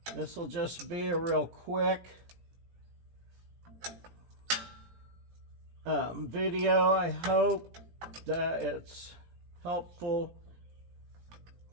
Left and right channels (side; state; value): left; late; 17 ms